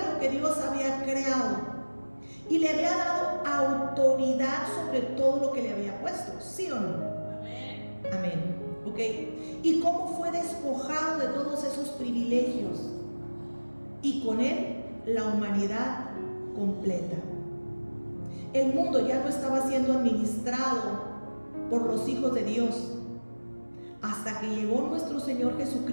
lo que Dios había creado y le había dado autoridad sobre todo lo que le había puesto, ¿sí o no? Amén. Amén. ¿Ok? ¿Y cómo fue despojado de todos esos privilegios? Y con él la humanidad completa. El mundo ya no estaba siendo administrado por los hijos de Dios, hasta que llegó nuestro Señor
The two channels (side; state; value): both; inverted; correlation -1.00